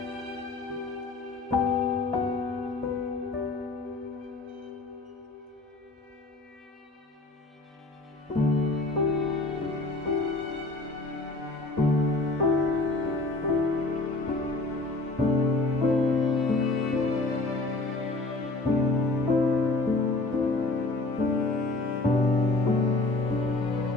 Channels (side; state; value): right; quieter; 3.2 dB